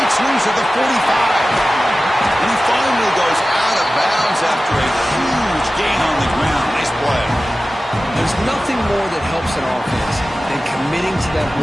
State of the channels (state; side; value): normal; both; correlation 0.95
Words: loose at the 45. And he finally goes out of bounds after a huge gain on the ground. Nice play. There's nothing more that helps an offense than committing to that